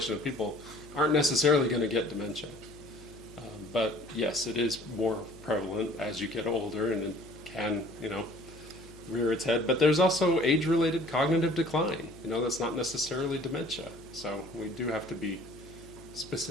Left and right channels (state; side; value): noise; left; hum, 20 dB below the sound